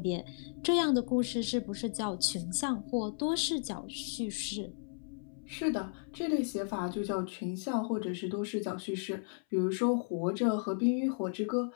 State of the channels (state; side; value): silent; right; 55 dB below the other